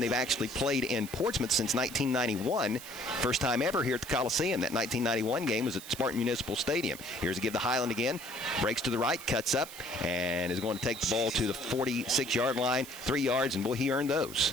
actually played in Portsmouth since 1991. First time ever here at the Coliseum. That 1991 game was at Spartan Municipal Stadium. Here's a give to Highland again. Breaks to the right, cuts up, and is going to take the ball to the 46-yard line. 3 yards, and boy, he earned those.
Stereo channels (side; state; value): right; noise; hiss, 14 dB below the sound